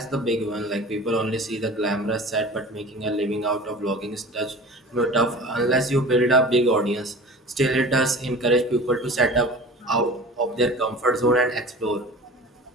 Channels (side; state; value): both; normal; correlation 0.39